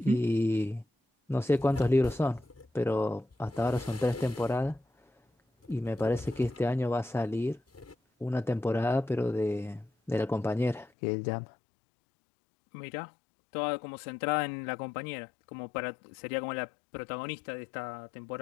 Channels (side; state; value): right; drops out; at 10.9 s